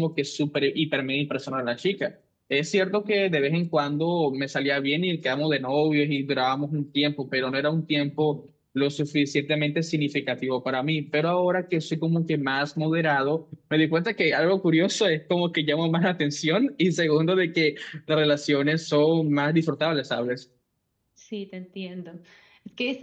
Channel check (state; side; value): identical; both; correlation 1.00